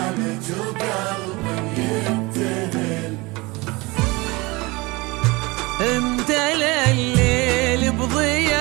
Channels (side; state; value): left; quieter; 23.8 dB